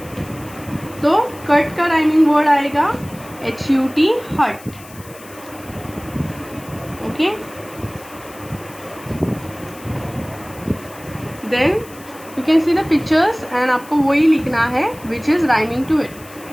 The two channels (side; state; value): left; noise; hiss, 20 dB below the sound